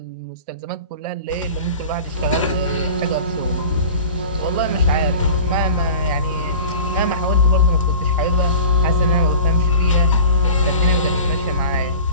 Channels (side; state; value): both; inverted; correlation -0.39